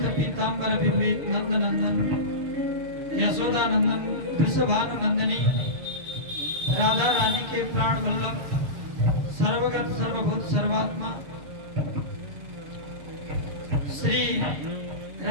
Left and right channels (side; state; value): left; late; 6.8 ms